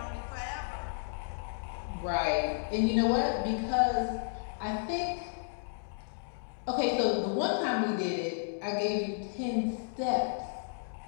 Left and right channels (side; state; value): right; silent; digital silence